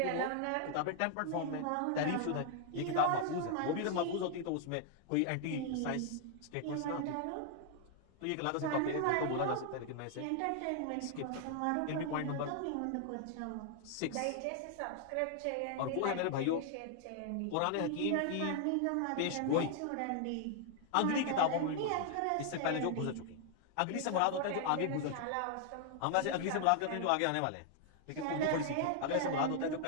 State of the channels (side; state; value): both; different; correlation 0.00